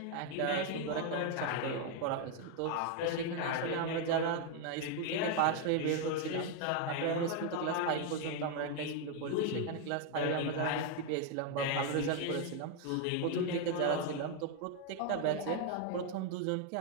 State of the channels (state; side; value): different; both; correlation 0.01